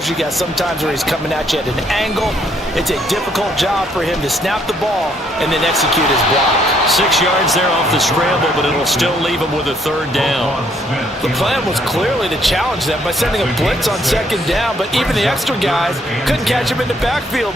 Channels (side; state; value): both; normal; correlation 0.68